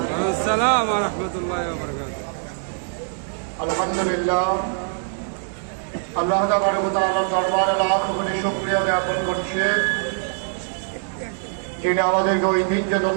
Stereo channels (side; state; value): left; silent; 63 dB below the other